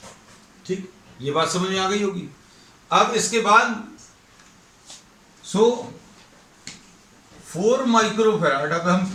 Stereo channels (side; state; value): both; identical; correlation 1.00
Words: ठीक, ये बात समझ में आ गई होगी। अब इसके बाद 4 माइक्रोफैराड, अब